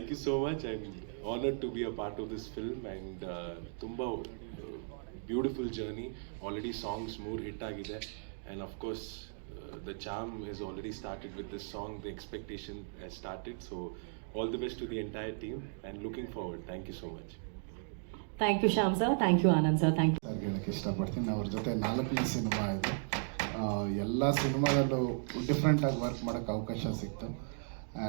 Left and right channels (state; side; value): silent; left; digital silence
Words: you so much. I'm honored to be a part of this film, and tumba beautiful journey. Already songs more hit agide, and of course the charm has already started with this song. The expectation has started. So all the best to the entire team and looking forward. Thank you so much. Thank you Shyam sir, thank you Anand sir, thank you. ಹೇಳಕ್ಕೆ ಇಷ್ಟಪಡ್ತೀನಿ. ಅವ್ರ ಜೊತೆ 4ನೇ cinema ಇದು. ಎಲ್ಲ ಸಿನಿಮಾದಲ್ಲೂ ಡಿಫ್ರೆಂಟಾಗಿ work ಮಾಡೋಕ್ಕೆ ಅವಕಾಶ ಸಿಕ್ತು.